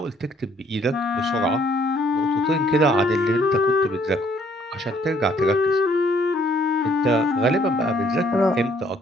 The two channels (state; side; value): normal; both; correlation 0.64